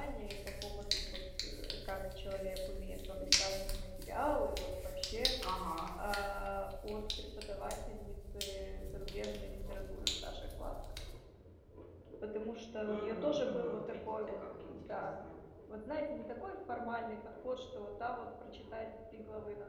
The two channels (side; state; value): both; identical; correlation 1.00